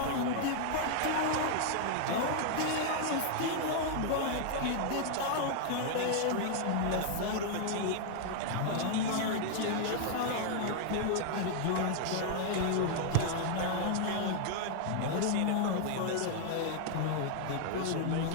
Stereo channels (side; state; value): both; different; correlation 0.00